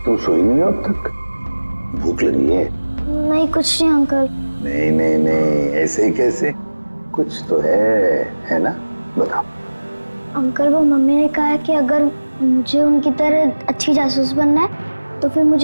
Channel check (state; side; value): inverted; both; correlation -1.00